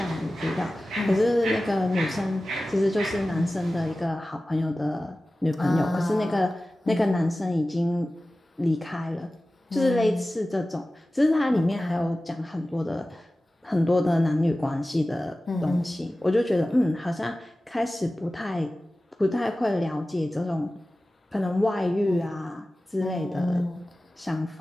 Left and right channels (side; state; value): both; normal; correlation 0.96